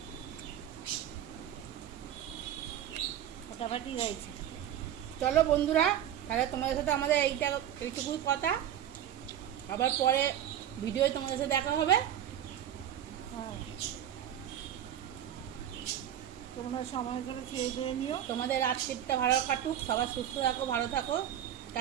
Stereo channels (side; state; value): left; quieter; 10.6 dB